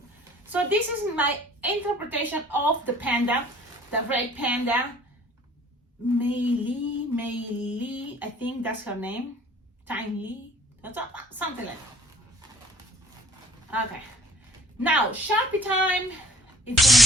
So this is my interpretation of the panda, the red panda. Mei, I think that's her name. Tiny, something like that. Okay. Now, Sharpie time. It's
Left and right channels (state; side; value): normal; both; correlation 0.52